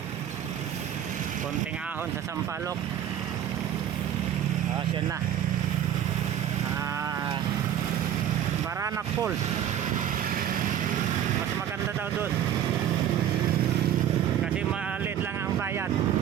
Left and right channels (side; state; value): left; quieter; 10.1 dB